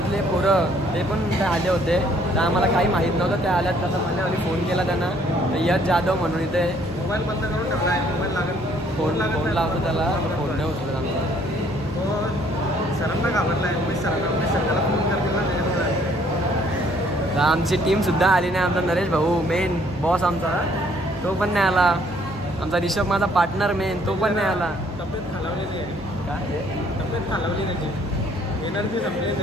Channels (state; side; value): normal; both; correlation 0.63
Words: पोरं ते पण आले होते. तर आम्हाला काही माहीत नव्हतं ते आल्यात. तसं मला आणि फोन केला त्यांना, यश जाधव म्हणून इथे. मोबाईल बंद करून ठेवला आहे. मोबाईल लागत फोन लावतो त्याला, फोन नाही उचलत आमचा. तो सरांना घाबरला आहे. उमेश सर त्याला फोन करतील ना त्याच्यामुळे. तर आमची टीमसुद्धा आली नाही. आमचा नरेश भाऊ मेन बॉस आमचा, तो पण नाही आला. आमचा ऋषभ माझा पार्टनर मेन, तो पण नाही आला. तब्येत खालावलेली आहे. काय तब्येत खालावली त्याची, एनर्जी संपली